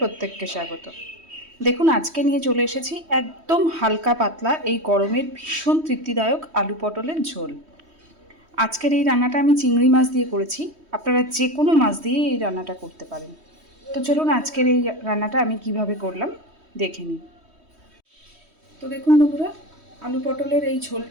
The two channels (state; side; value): late; left; 3.1 ms